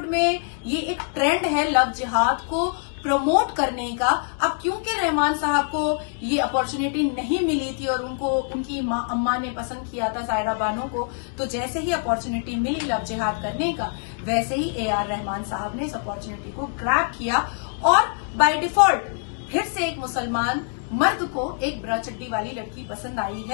में ये एक ट्रेंड है लव जिहाद को प्रमोट करने का। अब क्योंकि रहमान साहब को ये अपॉर्चुनिटी नहीं मिली थी और उनको उनकी अम्मा ने पसंद किया था सायरा बानो को, तो जैसे ही अपॉर्चुनिटी मिली लव जिहाद करने का, वैसे ही ए.आर. रहमान साहब ने इस अपॉर्चुनिटी को ग्रैब किया और बाय डिफॉल्ट फिर से एक मुसलमान मर्द को एक ब्रा चड्डी वाली लड़की पसंद आई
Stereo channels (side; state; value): right; silent; 57 dB below the other